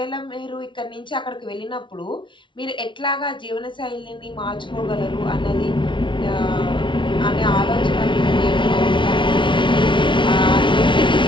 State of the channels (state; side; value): late; right; 0.24 ms